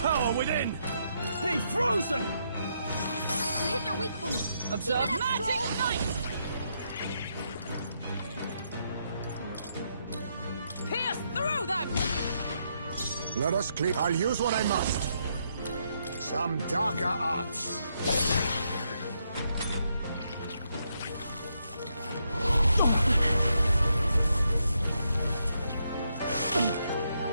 power within! Be frozen! You hit their weak point. Observe Keep it up, magic Stroll. knight! Pierce through them! Let us clear. I'll use what I must. Some darker arts.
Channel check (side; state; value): both; inverted; correlation -0.78